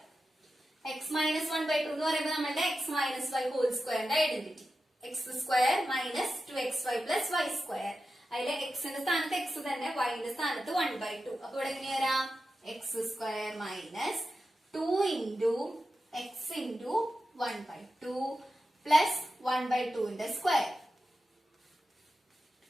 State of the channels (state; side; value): normal; both; correlation 0.92